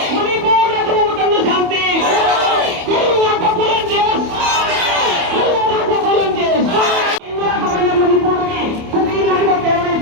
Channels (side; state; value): left; late; 28 ms